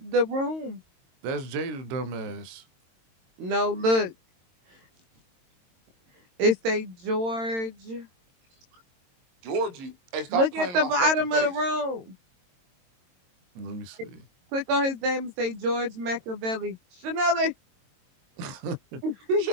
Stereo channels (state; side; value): late; left; 22 ms